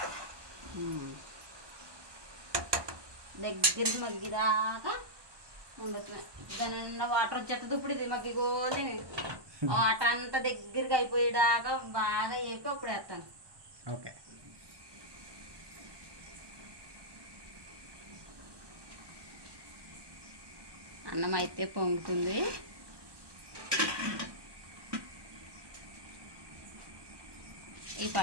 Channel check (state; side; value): late; left; 1.2 ms